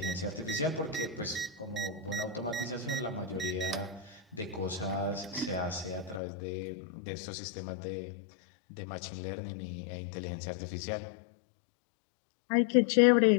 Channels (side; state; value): right; drops out; at 6.2 s